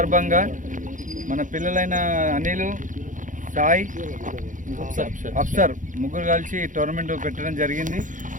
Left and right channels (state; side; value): late; left; 0.37 ms